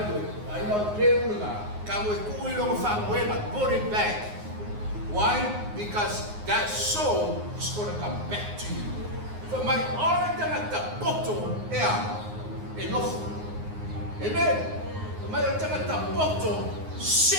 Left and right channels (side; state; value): left; late; 9.6 ms